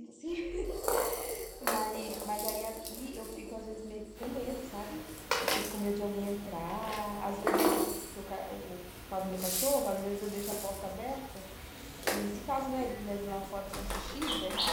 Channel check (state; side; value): identical; both; correlation 1.00